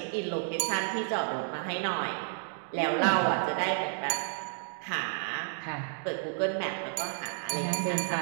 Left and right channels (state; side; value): silent; left; digital silence